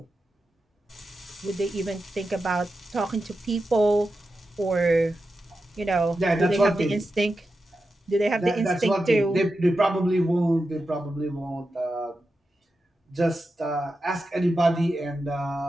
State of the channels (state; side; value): normal; both; correlation 0.90